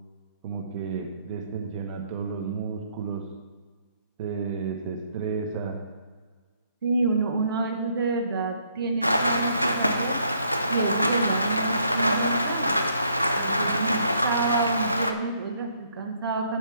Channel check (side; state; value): both; inverted; correlation -0.69